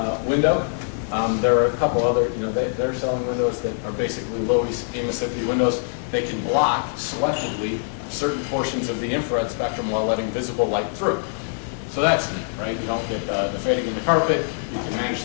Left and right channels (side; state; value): right; silent; 63 dB below the other